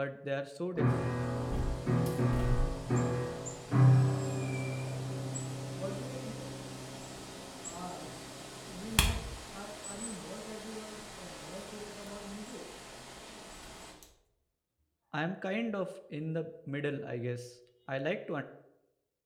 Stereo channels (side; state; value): both; identical; correlation 1.00